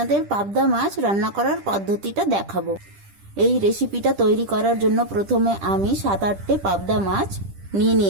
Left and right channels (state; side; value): late; left; 10 ms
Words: পাবদা মাছ রান্না করার পদ্ধতিটা দেখাবো। এই রেসিপিটা তৈরি করার জন্য প্রথমে আমি 7-8টে পাবদা মাছ